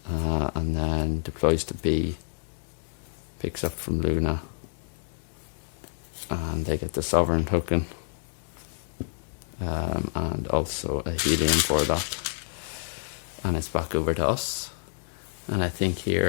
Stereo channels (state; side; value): silent; right; 59 dB below the other